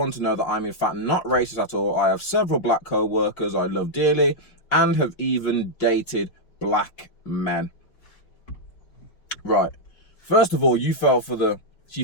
to know that I'm in fact not racist at all. I have several black co-workers I love dearly and have even dated black men. Right. First of all, you fell for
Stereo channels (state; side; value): late; right; 5.7 ms